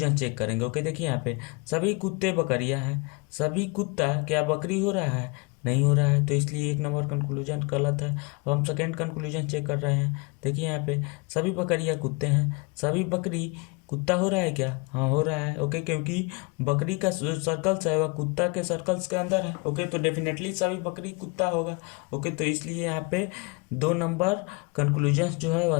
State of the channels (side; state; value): right; quieter; 28.8 dB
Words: चेक करेंगे। ओके, देखिए यहाँ पे सभी कुत्ते बकरियां हैं, सभी कुत्ता क्या बकरी हो रहा है, नहीं हो रहा है, तो इसलिए 1 नंबर कंक्लूजन गलत है। अब हम सेकेंड कंक्लूजन चेक कर रहे हैं। देखिए यहाँ पे सभी बकरियां कुत्ते हैं, सभी बकरी कुत्ता हो रहा है क्या, हाँ हो रहा है। ओके, क्योंकि बकरी का जो सर्कल्स है वह कुत्ता के सर्कल्स के अंदर है। ओके, तो डेफिनेटली सभी बकरी कुत्ता होगा। ओके, तो इसलिए यहाँ पे 2 नंबर कंक्लूजन्स जो है वह